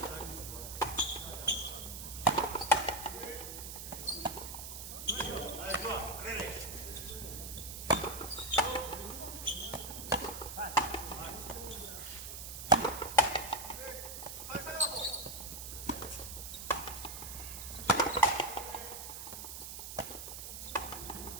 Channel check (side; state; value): right; noise; hiss, 8 dB below the sound